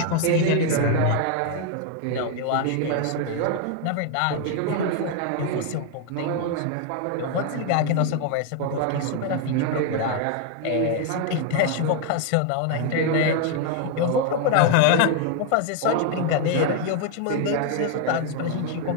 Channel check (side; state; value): both; different; correlation 0.00